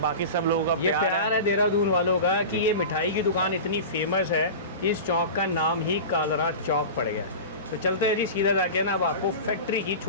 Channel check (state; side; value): inverted; both; correlation -0.30